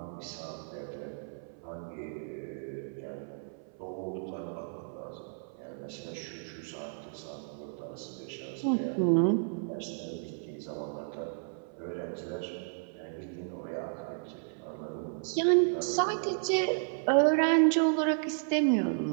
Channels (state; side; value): silent; left; 56 dB below the other